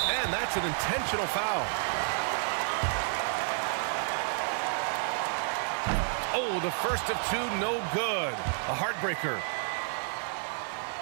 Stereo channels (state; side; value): silent; left; 58 dB below the other